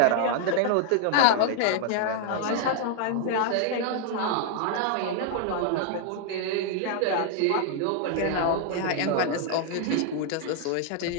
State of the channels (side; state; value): both; different; correlation 0.00